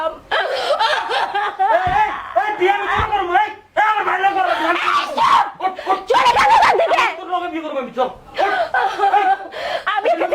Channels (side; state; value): both; identical; correlation 1.00